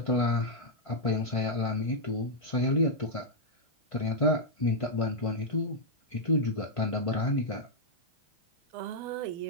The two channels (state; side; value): late; right; 1.5 ms